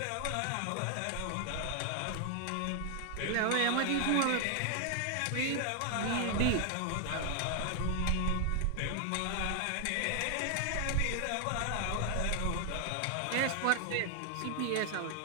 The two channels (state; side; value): different; both; correlation 0.00